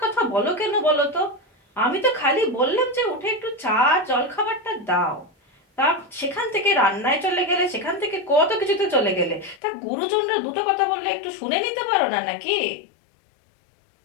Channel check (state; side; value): drops out; right; at 9.6 s